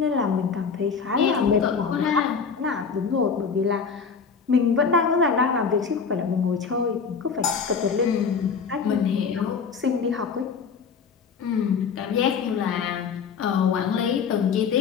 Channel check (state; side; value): quieter; right; 5.8 dB